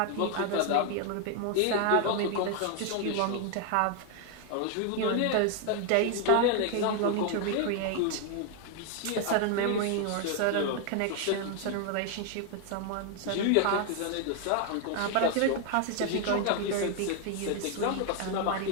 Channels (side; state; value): both; different; correlation 0.00